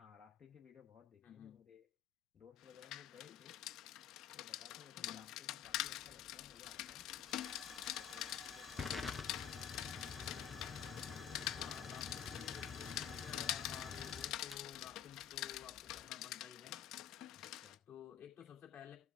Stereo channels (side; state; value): right; quieter; 9.6 dB